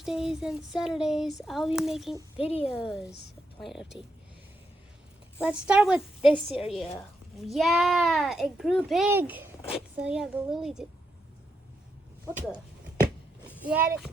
and Saturdays, I'll be making videos of Plant Update. Let's start with this area. Yeah, it grew big. So yeah, the lily did. What the? Yeah, this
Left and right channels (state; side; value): normal; both; correlation 0.82